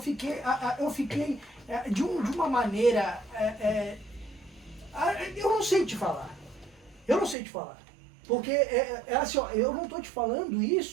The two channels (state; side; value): drops out; left; at 7.4 s